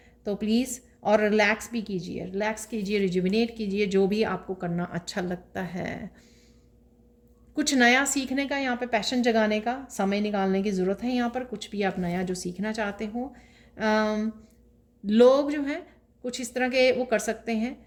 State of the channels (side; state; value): both; identical; correlation 1.00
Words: तो प्लीज़, और रिलैक्स भी कीजिए, रिलैक्स कीजिए, रिजुविनेट कीजिए, जो भी आपको करना अच्छा लगता है। कुछ नया सीखने का यहाँ पे पैशन जगाने का समय निकालने की ज़रूरत है यहाँ पर। कुछ भी आप नया जो सीखना चाहते हो, लोग जो हैं कुछ इस तरह के वो कर सकते